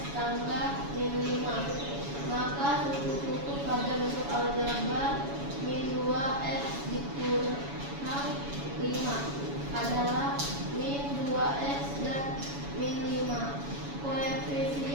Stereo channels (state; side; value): late; left; 7.1 ms